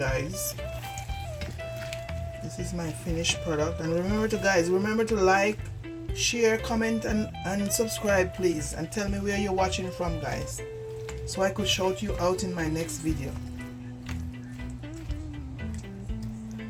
This is my finished product. And remember to like, share, comment, and subscribe, please, and tell me where you're watching from, guys, so I could shout you out in my next video.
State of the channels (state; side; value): identical; both; correlation 1.00